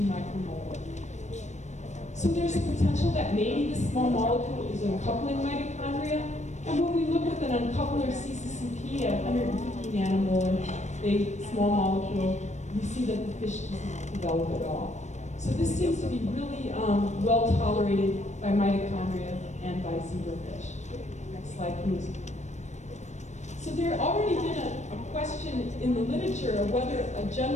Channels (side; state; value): right; late; 0.34 ms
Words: micromolar. So there's a potential that maybe this small molecule is uncoupling mitochondria. And when we look with an uncoupler CCCP at 150 nanomolar, a small molecule, we see that the fish does not develop at all. So this seems to be really well tolerated by mitochondria and by zebrafish. Next slide, please. So there already been a question in the literature of whether a